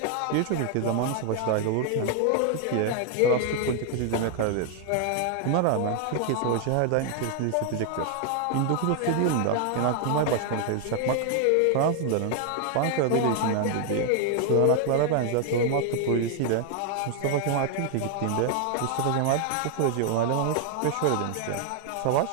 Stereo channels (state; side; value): different; both; correlation 0.00